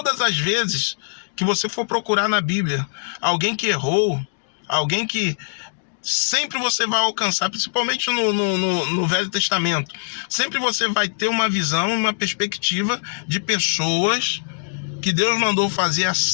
as vezes que você for procurar na Bíblia alguém que errou, alguém que sempre você vai alcançar, principalmente no Velho Testamento, sempre você vai ter uma visão, uma perspectiva de pessoas que Deus mandou fazer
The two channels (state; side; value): silent; right; digital silence